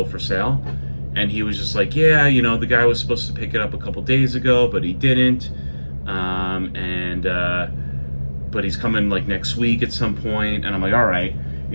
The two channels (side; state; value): both; inverted; correlation -1.00